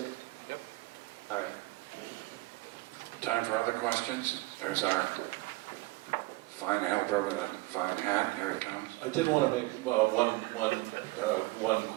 Yep. All right. Time for other questions? There's our fine helper with a fine hat. Here he comes. I did want to make one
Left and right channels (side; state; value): left; quieter; 21.4 dB